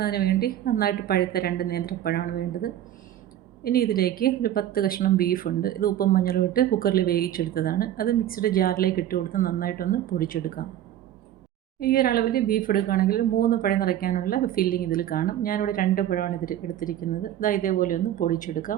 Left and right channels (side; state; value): left; quieter; 11.8 dB